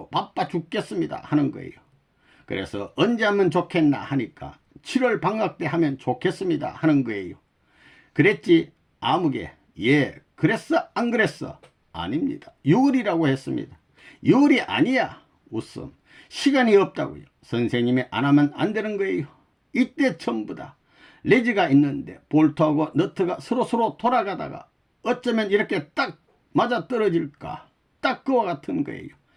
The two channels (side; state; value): both; identical; correlation 1.00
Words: 바빠 죽겠습니다 하는 거예요. 그래서 언제 하면 좋겠나 하니까 7월 방학 때 하면 좋겠습니다 하는 거예요. 그랬지 아무개 예 그랬어 안 그랬어? 아닙니다. 6월이라고 했습니다. 6월이 아니야. 웃음. 시간이 없다고요. 선생님이 안 하면 안 되는 거예요. 이때 전부 다 레지가 있는데 볼트하고 너트가 서로 돌아가다가 어쩌면 이렇게 딱 맞아떨어질까, 딱 그와 같은 거예요.